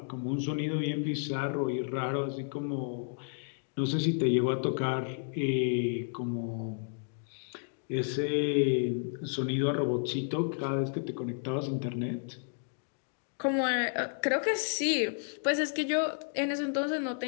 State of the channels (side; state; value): right; silent; digital silence